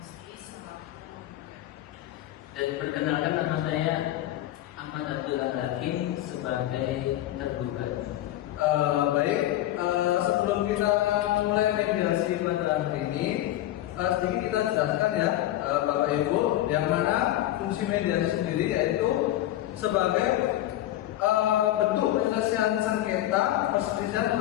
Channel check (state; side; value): quieter; right; 14.0 dB